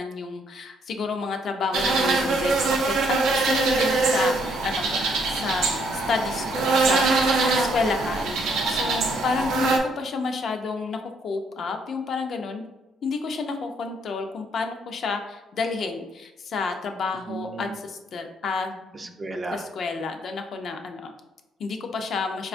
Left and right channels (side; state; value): both; normal; correlation 0.69